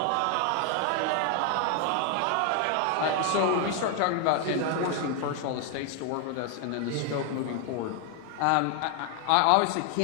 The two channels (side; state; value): both; different; correlation 0.00